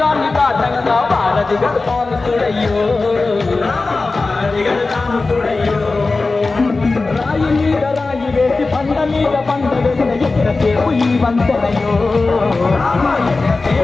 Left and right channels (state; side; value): quieter; right; 3.6 dB